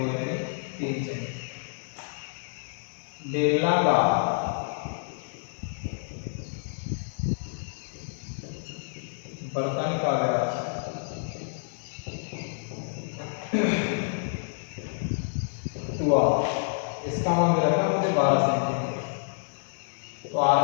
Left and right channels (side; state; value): right; silent; digital silence